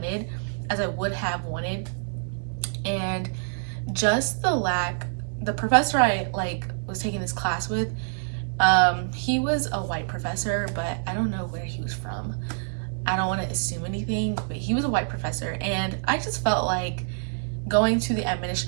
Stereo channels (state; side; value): silent; left; digital silence